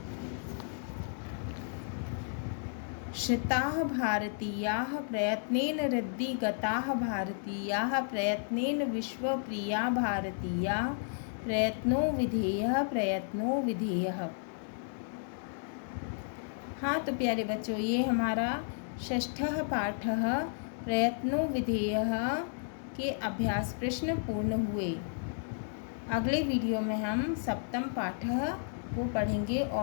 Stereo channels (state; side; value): silent; right; digital silence